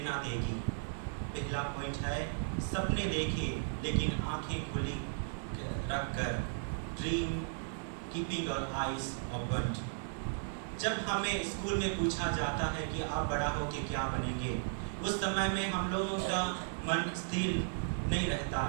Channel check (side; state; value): left; silent; digital silence